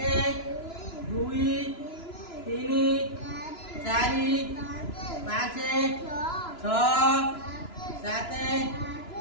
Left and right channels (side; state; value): right; late; 2.9 ms